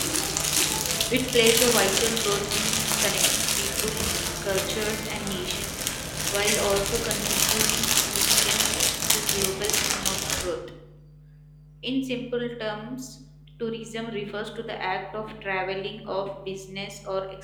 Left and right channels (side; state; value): both; identical; correlation 1.00